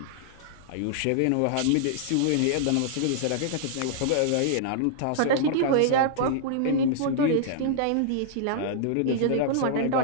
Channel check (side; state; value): both; different; correlation -0.01